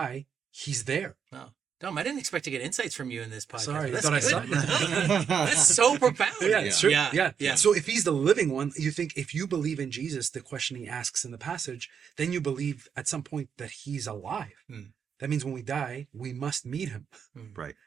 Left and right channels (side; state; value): left; quieter; 7.2 dB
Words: he's there. Wow. Dom, I didn't expect to get insights from you in this podcast. Sorry, I That's thought I good. saw That's so profound. Yeah, it's true. Yeah. Yeah. So if he's the living one, you think if you believe in Jesus, the question he asks in the passage, then you believe at some point that he's alive. That means when we die, we must meet him. Right.